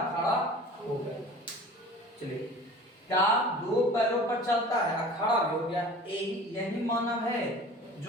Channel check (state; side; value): normal; both; correlation 0.41